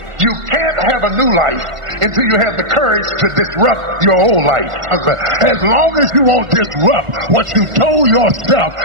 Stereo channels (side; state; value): left; late; 1.4 ms